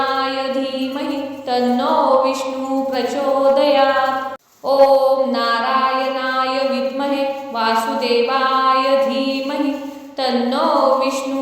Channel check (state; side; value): identical; both; correlation 1.00